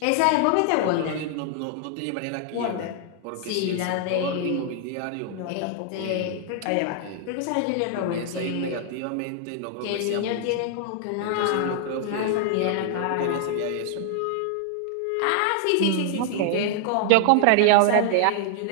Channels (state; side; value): different; both; correlation 0.00